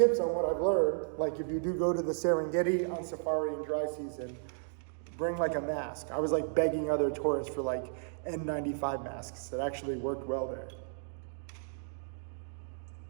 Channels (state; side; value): silent; left; digital silence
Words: on what I've learned. Like if you do go to the Serengeti on safari in dry season, bring like a mask. I was like begging other tourists for like N95 masks that actually worked well there.